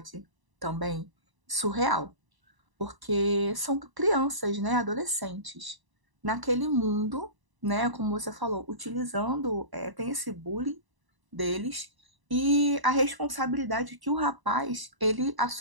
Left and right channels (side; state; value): left; late; 1.0 ms